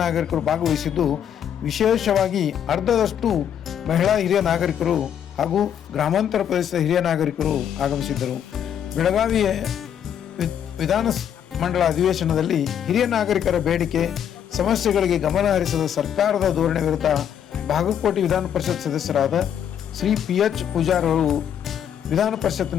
ನಾಗರಿಕರು ಭಾಗವಹಿಸಿದ್ದು, ವಿಶೇಷವಾಗಿ ಅರ್ಧದಷ್ಟು ಮಹಿಳಾ ಹಿರಿಯ ನಾಗರಿಕರು ಹಾಗೂ ಗ್ರಾಮಾಂತರ ಪ್ರದೇಶದ ಹಿರಿಯ ನಾಗರಿಕರು ಆಗಮಿಸಿದ್ದರು. ಬೆಳಗಾವಿಯ ವಿಧಾನ ಮಂಡಲ ಅಧಿವೇಶನದಲ್ಲಿ ಹಿರಿಯ ನಾಗರಿಕರ ಬೇಡಿಕೆ ಸಮಸ್ಯೆಗಳಿಗೆ ಗಮನ ಹರಿಸದ ಸರ್ಕಾರದ ಧೋರಣೆ ವಿರುದ್ಧ ಬಾಗಲಕೋಟೆ ವಿಧಾನ ಪರಿಷತ್ ಸದಸ್ಯರಾದ ಶ್ರೀ PH ಪೂಜಾರ್ ಅವರು ವಿಧಾನ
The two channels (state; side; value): quieter; right; 9.1 dB